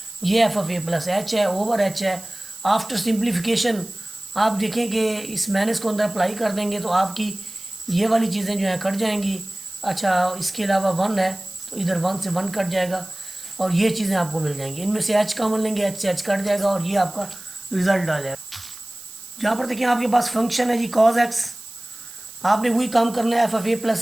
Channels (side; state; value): right; noise; hiss, 16 dB below the sound